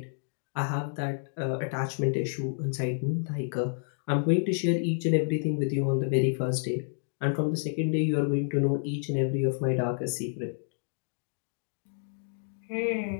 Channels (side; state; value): right; silent; digital silence